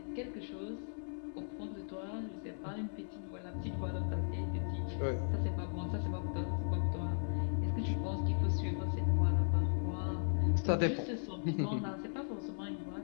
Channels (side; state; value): right; silent; digital silence